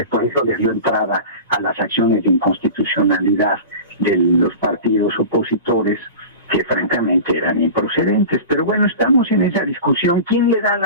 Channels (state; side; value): inverted; both; correlation -0.33